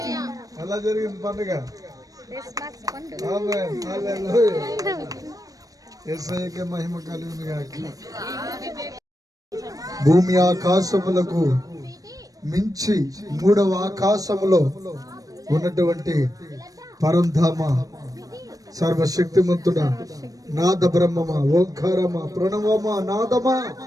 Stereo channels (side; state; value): left; late; 0.17 ms